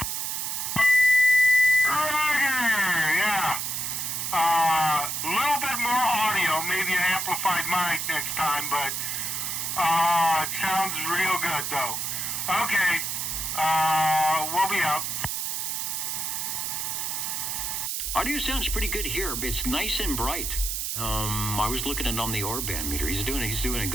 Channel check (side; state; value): right; noise; hiss, 2 dB below the sound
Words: Roger, yeah. A little bit more audio, maybe an amplified mic next time, but it sounds real good, though. Okay, we'll be out. Audio sounds pretty good here. It's nice and bright. I was looking at it on the Orban meter. He's doing a